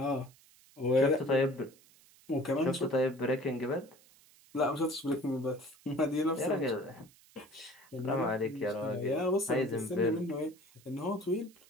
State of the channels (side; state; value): right; noise; hiss, 27 dB below the sound